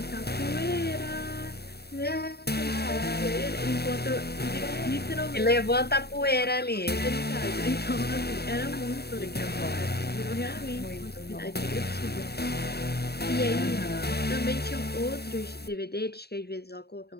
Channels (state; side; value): late; right; 0.47 ms